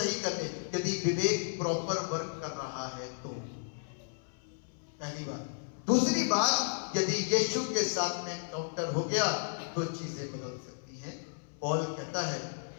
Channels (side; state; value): right; silent; 55 dB below the other